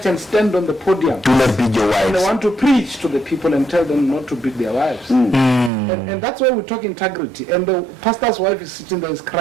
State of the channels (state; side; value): drops out; left; at 5.7 s